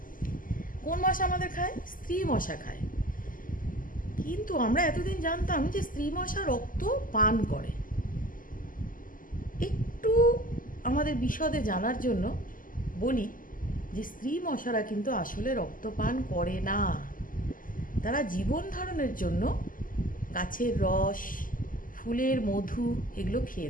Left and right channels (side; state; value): right; late; 0.40 ms